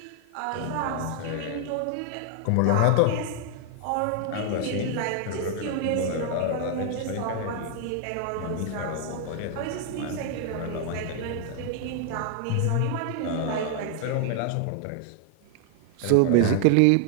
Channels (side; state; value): both; different; correlation 0.00